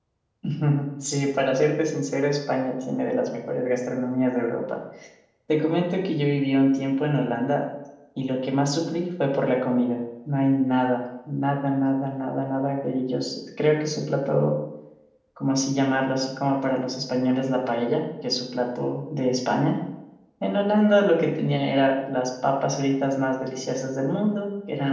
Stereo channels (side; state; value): both; identical; correlation 1.00